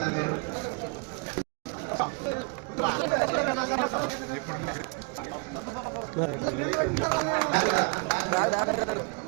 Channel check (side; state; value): left; quieter; 33.9 dB